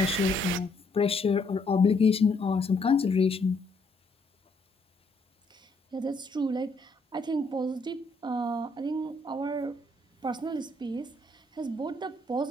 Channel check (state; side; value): normal; both; correlation 0.72